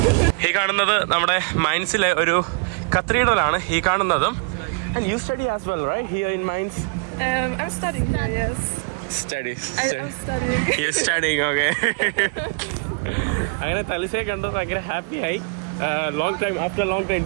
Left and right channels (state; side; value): quieter; left; 36.0 dB